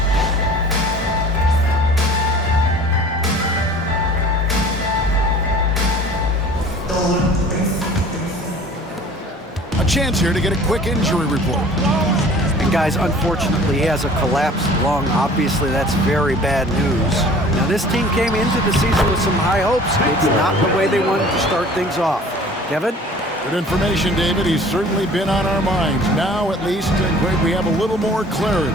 A chance here to get a quick injury report. And guys, unfortunately, he has a collapsed lung. Obviously, that's very bad news. Now, this team came into the season with some high hopes. It's not the way they wanted to start things off. Kevin? Good information, David. He's certainly been on our minds. Now, at least, we have a little more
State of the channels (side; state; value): both; normal; correlation 0.47